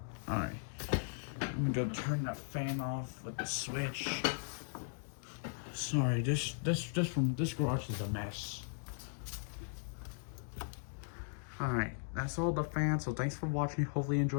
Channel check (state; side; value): silent; right; digital silence